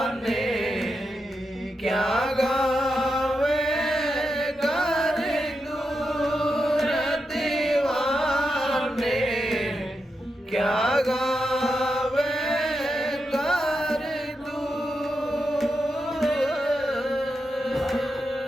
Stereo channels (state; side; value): normal; both; correlation 0.87